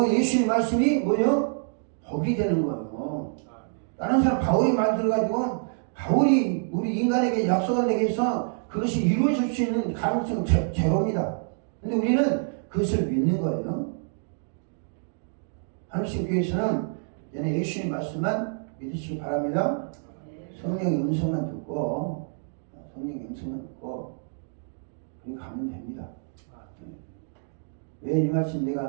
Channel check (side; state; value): left; silent; digital silence